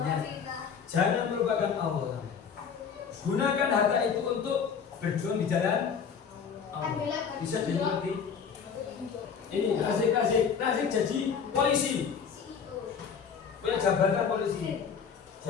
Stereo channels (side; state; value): right; quieter; 6.7 dB